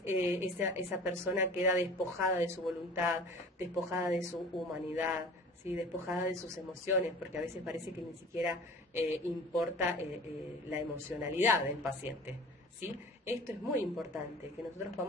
esa persona queda despojada de su voluntad, despojada de su humanidad, ¿sí? Despojada de sus emociones, porque a veces parece que ni siquiera importa la emocionalidad del paciente, ¿sí? Esto es muy importante, que nosotros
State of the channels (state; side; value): normal; both; correlation 0.43